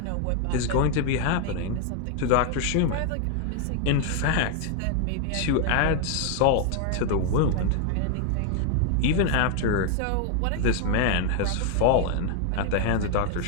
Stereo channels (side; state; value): both; different; correlation 0.00